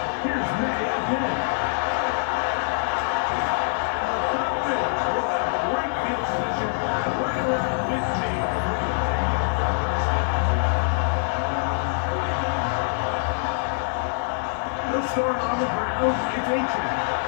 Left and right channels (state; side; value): silent; right; digital silence